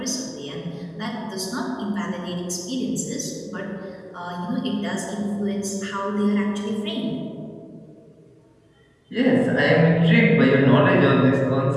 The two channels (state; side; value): identical; both; correlation 1.00